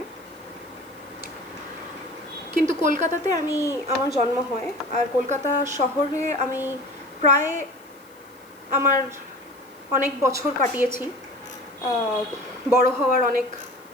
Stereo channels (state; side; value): noise; left; hiss, 28 dB below the sound